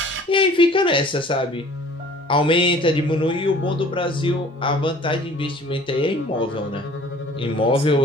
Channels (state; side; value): normal; both; correlation 0.50